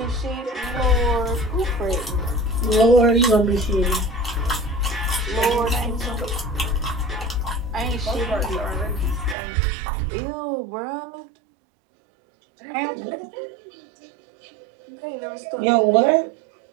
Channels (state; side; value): drops out; left; at 9.3 s